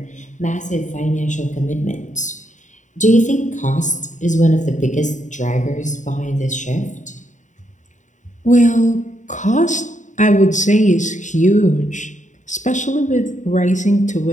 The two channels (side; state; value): right; late; 0.36 ms